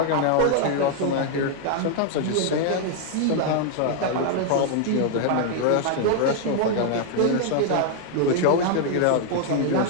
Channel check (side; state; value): both; different; correlation 0.00